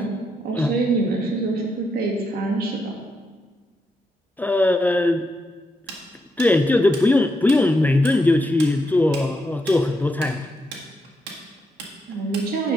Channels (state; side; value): normal; both; correlation 0.82